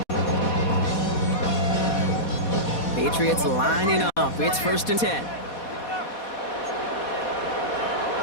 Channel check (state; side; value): late; right; 4.2 ms